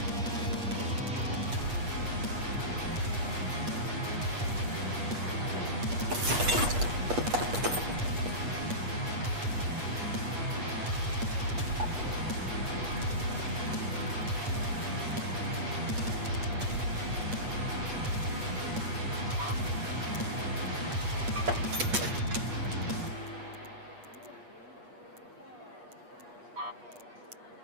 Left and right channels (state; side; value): late; left; 8.3 ms